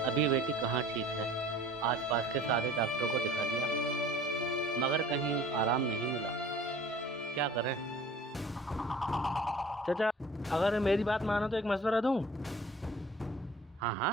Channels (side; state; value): both; normal; correlation 0.48